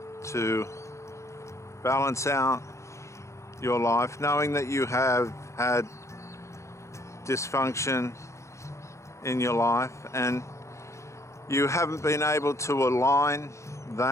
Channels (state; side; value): late; right; 0.14 ms